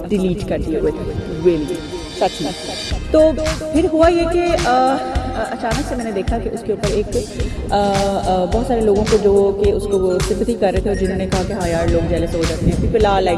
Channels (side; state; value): both; identical; correlation 1.00